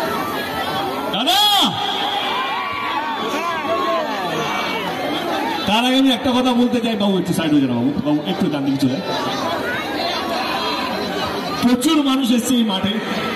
দাদা তার আগে আমি একটা কথা বলতে চাই, বাবু একটু সাইড হয়ে যান, বাবু বাবু একটু ডান দিকে চলে। প্রচুর মানুষ এসছে এই মাঠে,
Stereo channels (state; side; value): identical; both; correlation 1.00